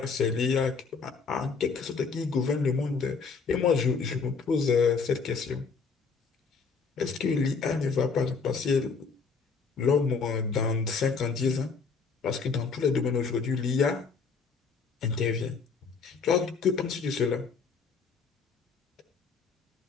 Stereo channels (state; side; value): quieter; right; 5.1 dB